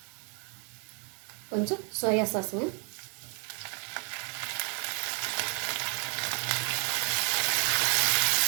கொஞ்சம் சோயா சாஸுங்க.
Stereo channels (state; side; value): quieter; left; 37.8 dB